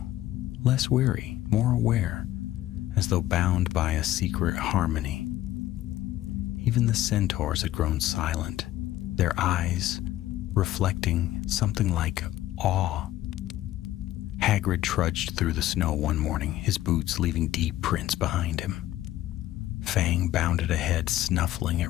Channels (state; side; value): quieter; right; 14.3 dB